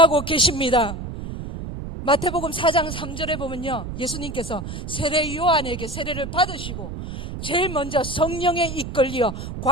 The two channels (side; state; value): right; noise; rumble, 8 dB below the sound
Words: 계십니다. 마태복음 4장 3절에 보면요, 예수님께서 세례 요한에게 세례를 받으시고 제일 먼저 성령에 이끌려